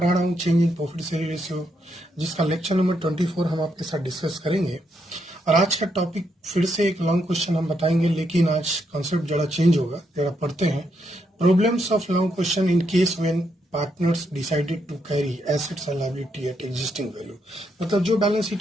रहा हूँ change in profit sharing ratio, जिसका lecture number 24 हम आपके साथ discuss करेंगे। और आज का टॉपिक फिर से एक लॉन्ग क्वेश्चन हम बताएंगे, लेकिन आज कॉन्सेप्ट जरा चेंज होगा। जरा पढ़ते हैं। Problems of long question in case when partners decided to carry assets and liability at existing value. मतलब जो बैलेंस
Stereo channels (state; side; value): normal; both; correlation 0.78